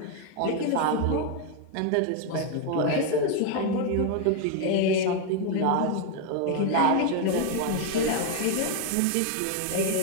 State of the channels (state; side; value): different; both; correlation 0.01